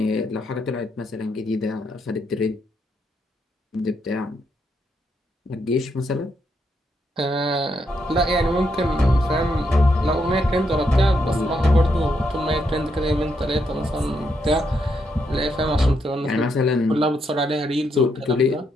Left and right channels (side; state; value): both; normal; correlation 0.78